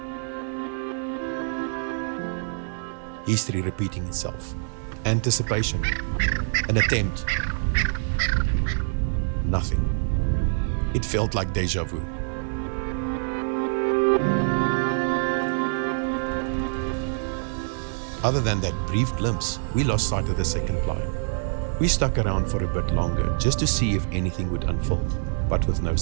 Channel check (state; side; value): silent; left; digital silence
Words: History repeating itself. Anticipation. An attempt. Nothing. It felt like deja vu. Other than that brief glimpse, we lost sight of the second climb. We stuck around for a bit longer just to see if anything would unfold, but with no